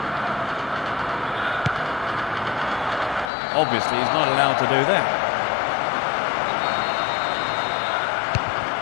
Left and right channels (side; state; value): right; drops out; at 3.3 s